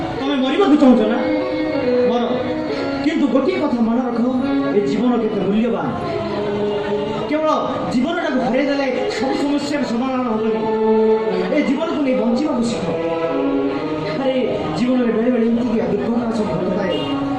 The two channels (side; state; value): both; identical; correlation 1.00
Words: ତମେ ମରିବାକୁ ଚାହୁଁଛ ନା ମର କିନ୍ତୁ ଗୋଟିଏ କଥା ମନେ ରଖ ଏ ଜୀବନ କେତେ ମୂଲ୍ୟବାନ କେବଳ ଜୀବନଟାକୁ ଫେରାଇ ଦେଲେ ସବୁ ସମସ୍ୟାର ସମାଧାନ ହେବନି ଏ ଜୀବନକୁ ନେଇ ବଞ୍ଚିବାକୁ ଶିଖ ଆରେ ଜୀବନରେ ବେଳେ ବେଳେ ଏମିତି ଦୁର୍ଘଟଣା ସବୁ ଘଟୁଥାଏ